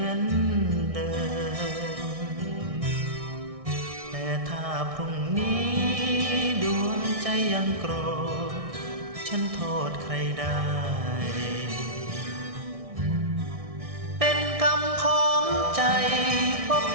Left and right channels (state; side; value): late; left; 1.6 ms